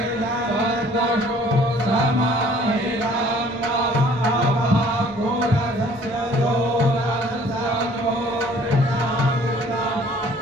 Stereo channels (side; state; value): both; normal; correlation 0.55